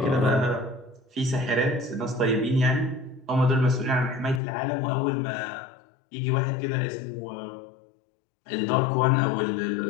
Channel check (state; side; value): drops out; right; at 4.4 s